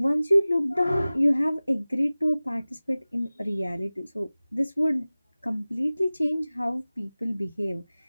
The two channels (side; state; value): both; inverted; correlation -0.98